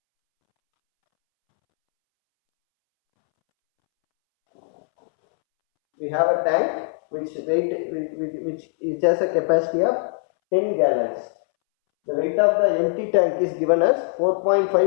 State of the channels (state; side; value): silent; right; 64 dB below the other